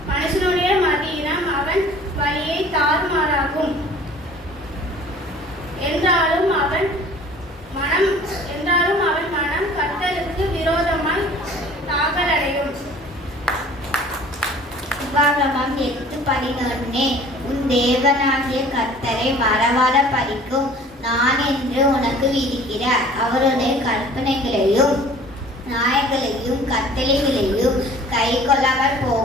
மனுஷனுடைய மதியினம் அவன் வழியை தாறுமாறாகும். என்றாலும் அவன் மனம் கர்த்தருக்கு விரோதமாய் தாக்கலடையும். உபாகமம் 8:11 உன் தேவனாகிய கர்த்தரை மறவாத படிக்கும் நான் என்று உனக்கு விதிக்கிற அவருடைய கற்பனைகளையும் நியாயங்களையும் கட்டளைகளையும் கை கொள்ளாமல்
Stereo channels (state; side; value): normal; both; correlation 0.49